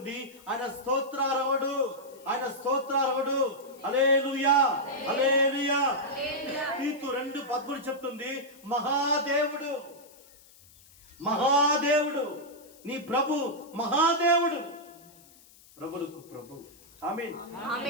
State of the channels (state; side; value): noise; left; hiss, 25 dB below the sound